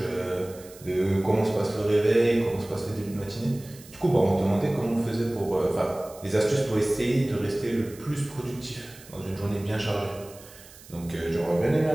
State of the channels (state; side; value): noise; right; hiss, 21 dB below the sound